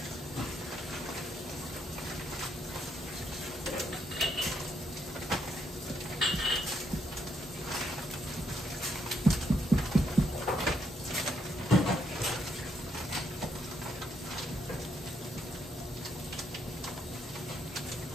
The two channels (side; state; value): both; normal; correlation 0.75